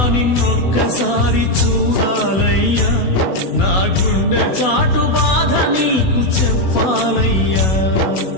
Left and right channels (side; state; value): right; late; 16 ms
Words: నిన్నొక్కసారి చూడాలయ్యా, నా గుండె చాటు బాధ నీకు చెప్పాలయ్యా.